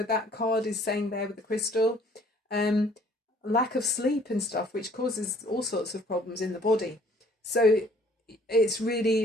that card is saying there with the crystal. Lack of sleep and stuff, which causes all sorts of problems in the body. So it's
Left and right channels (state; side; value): normal; both; correlation 0.57